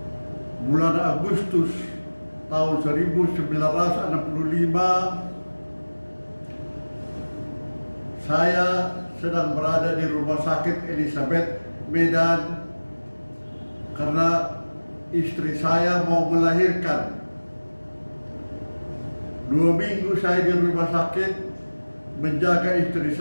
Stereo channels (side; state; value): both; inverted; correlation -1.00